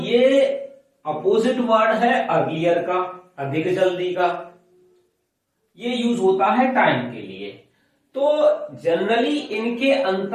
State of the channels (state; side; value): identical; both; correlation 1.00